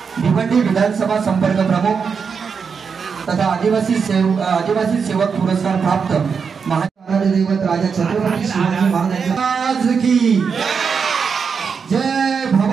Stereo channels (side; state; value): left; quieter; 5.9 dB